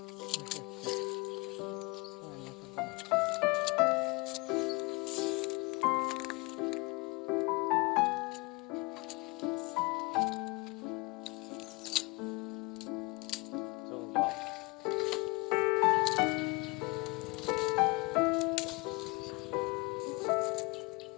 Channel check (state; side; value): quieter; right; 26.8 dB